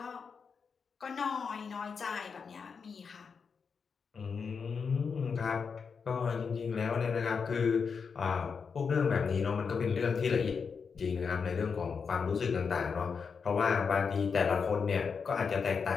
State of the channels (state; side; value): quieter; right; 5.7 dB